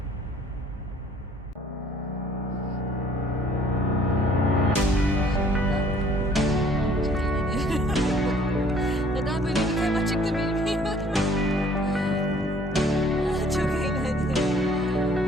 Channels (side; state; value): both; normal; correlation 0.58